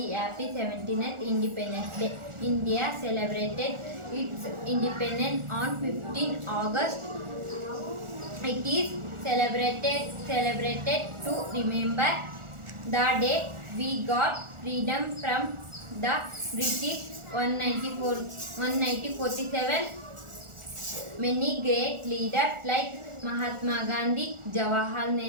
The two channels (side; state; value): left; late; 1.4 ms